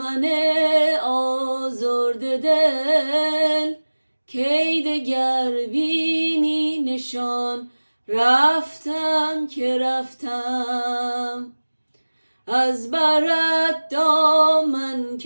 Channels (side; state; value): both; inverted; correlation -1.00